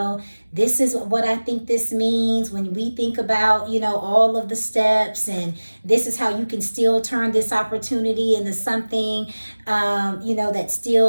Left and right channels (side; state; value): both; inverted; correlation -1.00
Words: this is what I think this means when we think about, all of the steps, and this is how you can still turn this opportunity into something, that